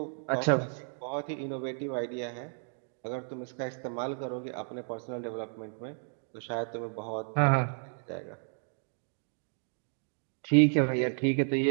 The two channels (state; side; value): silent; left; 56 dB below the other